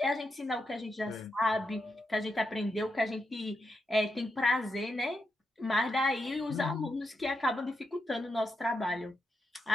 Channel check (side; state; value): both; normal; correlation 0.84